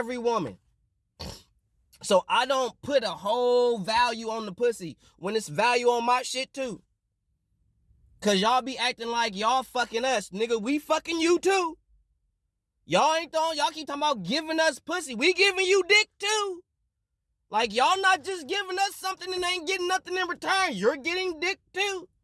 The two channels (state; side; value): identical; both; correlation 1.00